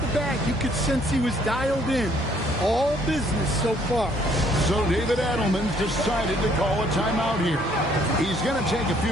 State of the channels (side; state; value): both; normal; correlation 0.64